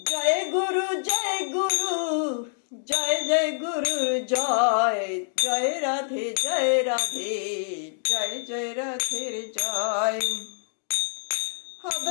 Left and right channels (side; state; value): right; silent; digital silence